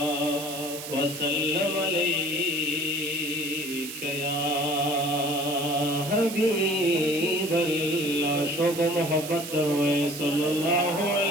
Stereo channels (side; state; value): right; noise; hiss, 10 dB below the sound